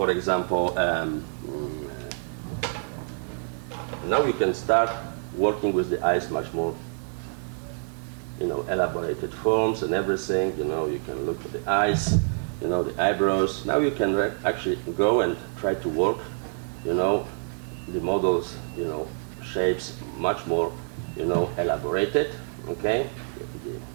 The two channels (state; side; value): silent; left; digital silence